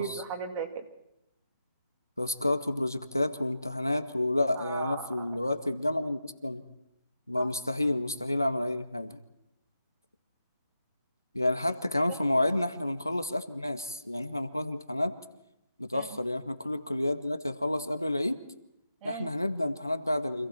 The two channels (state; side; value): inverted; both; correlation -0.89